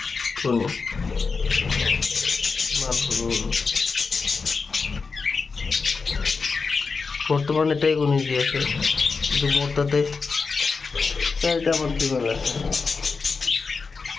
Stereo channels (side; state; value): right; quieter; 4.7 dB